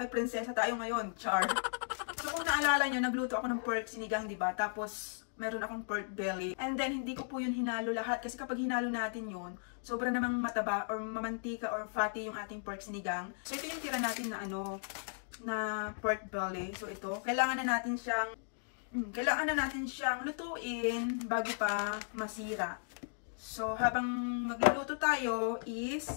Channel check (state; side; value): silent; right; digital silence